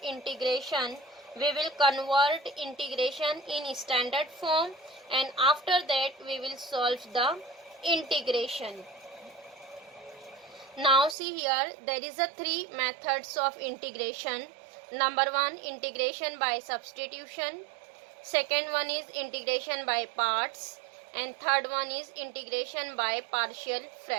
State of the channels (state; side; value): drops out; left; at 11.2 s